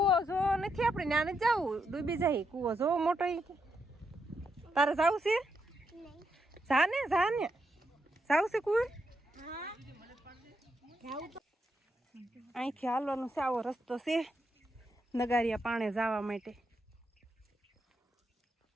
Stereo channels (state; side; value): normal; both; correlation 0.81